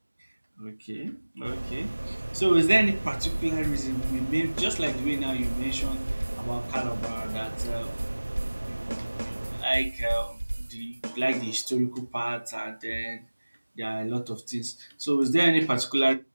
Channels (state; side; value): inverted; both; correlation -1.00